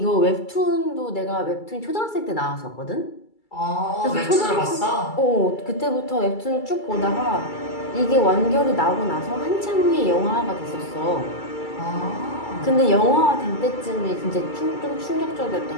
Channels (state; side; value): late; right; 2.3 ms